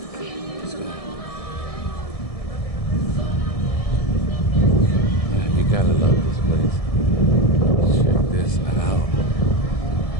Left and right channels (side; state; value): right; late; 1.7 ms